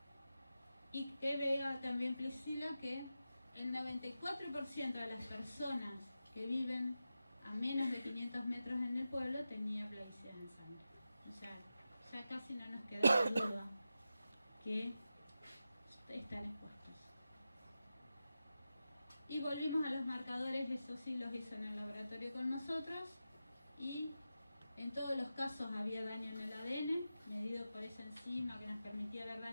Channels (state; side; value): inverted; both; correlation -0.92